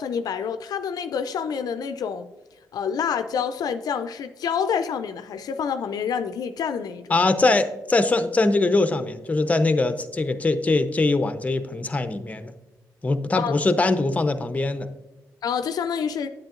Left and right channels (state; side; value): quieter; right; 3.3 dB